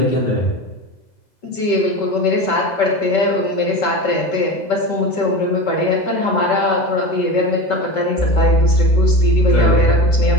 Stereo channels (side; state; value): right; late; 2.0 ms